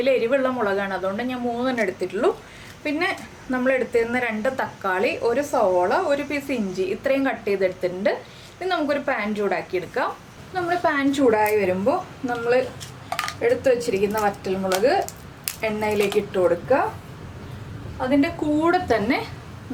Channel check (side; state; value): both; identical; correlation 1.00